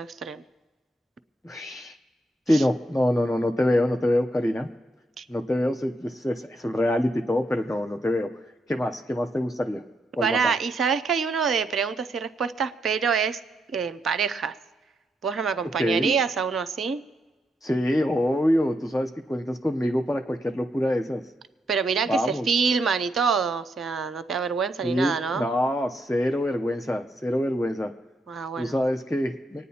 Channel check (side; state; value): both; normal; correlation 0.80